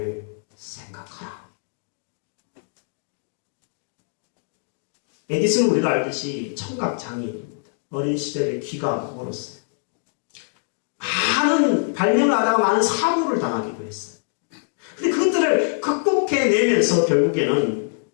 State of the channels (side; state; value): right; silent; digital silence